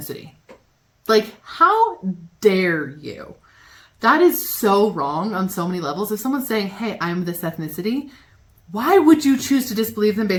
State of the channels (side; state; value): both; identical; correlation 1.00